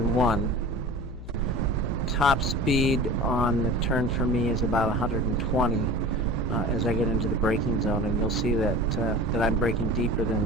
1. Top speed on the turn for me is about 120. As I get into the braking zone, and you'll see that that I'm braking deeper than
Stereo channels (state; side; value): noise; left; hum, 12 dB below the sound